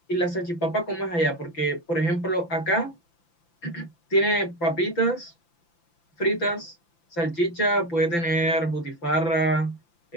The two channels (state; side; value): late; right; 5.9 ms